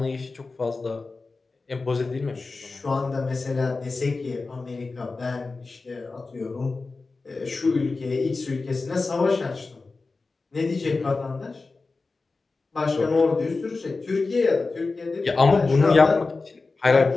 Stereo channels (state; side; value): quieter; right; 3.8 dB